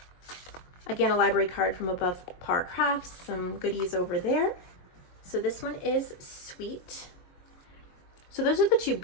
Again, a library card from Above Par Crafts, some goodies over there. So this one is sweet. So those are the 2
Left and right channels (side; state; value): right; late; 22 ms